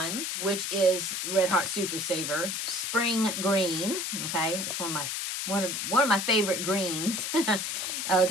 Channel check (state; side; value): noise; left; hiss, 2 dB below the sound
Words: which is Red Heart Super Saver, Spring Green. Okay, it's one of my favorite greens.